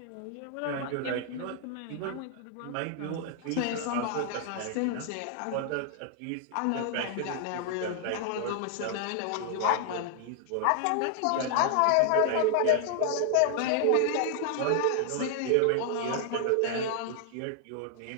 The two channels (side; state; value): both; different; correlation 0.00